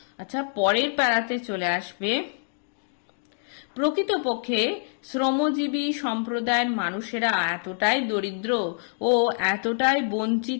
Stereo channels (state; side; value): silent; right; digital silence